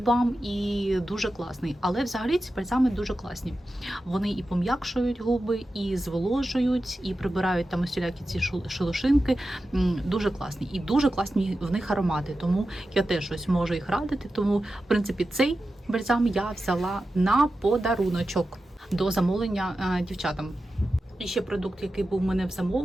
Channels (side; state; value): both; normal; correlation 0.92